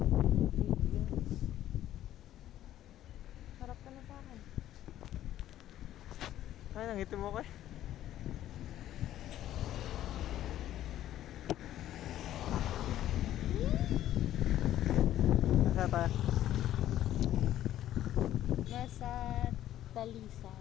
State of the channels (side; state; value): right; quieter; 12.6 dB